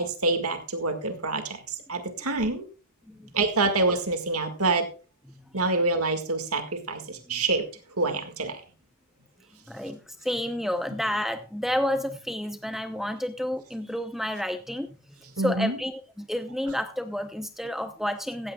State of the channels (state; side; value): normal; both; correlation 0.13